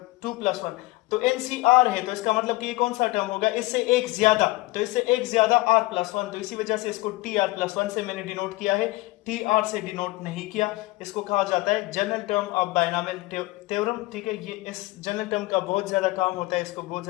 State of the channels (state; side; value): quieter; right; 20.9 dB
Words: 2+1। तो ncr है तो इसका मतलब कि ये कौन सा टर्म होगा? इससे एक ज्यादा, तो इससे एक ज्यादा r+1। तो इसी वजह से इसको tr+1 से मैंने डिनोट किया है, tr से डिनोट नहीं किया। इसको कहा जाता है general term of binomial theorem. ठीक है, ये इस जनरल टर्म का बहुत ज्यादा काम होता है, इसको बहुत